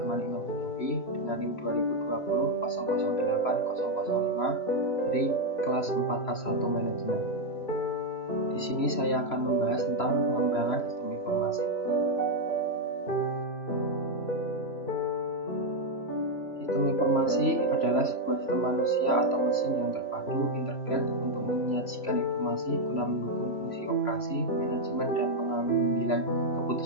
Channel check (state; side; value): late; right; 3.0 ms